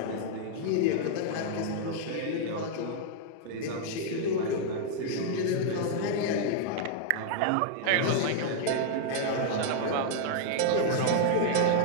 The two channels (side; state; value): both; different; correlation -0.01